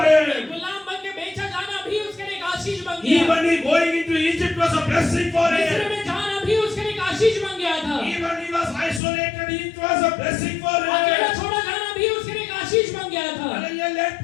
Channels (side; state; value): right; drops out; at 9.0 s